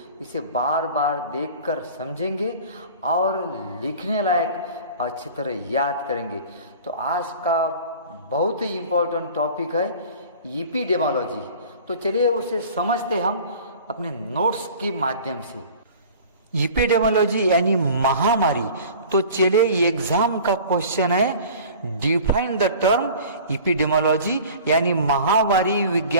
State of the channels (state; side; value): inverted; both; correlation -0.43